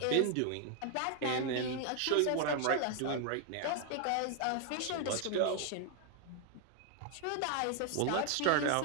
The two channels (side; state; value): both; different; correlation 0.00